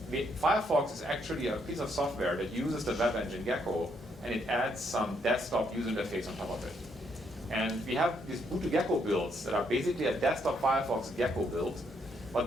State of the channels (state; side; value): normal; both; correlation 0.74